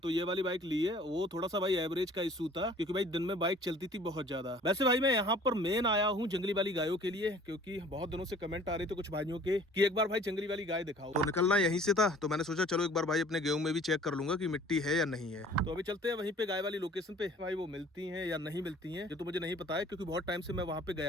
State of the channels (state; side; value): normal; both; correlation 0.51